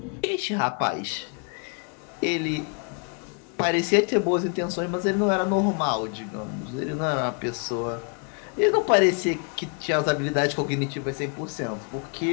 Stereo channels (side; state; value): right; quieter; 38.8 dB